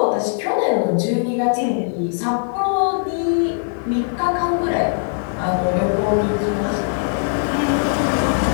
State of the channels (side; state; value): right; silent; 59 dB below the other